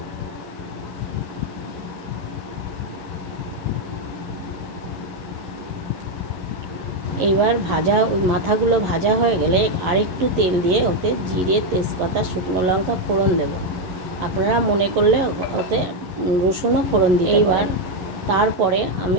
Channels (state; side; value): late; left; 11 ms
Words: এবার মাথাগুলো ভাজা হয়ে গেলে আরেকটু তেল দিয়ে ওতে জিরে, তেজপাতা, শুকনো লঙ্কা ফোড়ন দেব। আপনারা মনে করলে ওতে রসুনও ফোড়ন দিতে পারেন। এইবার তারপরে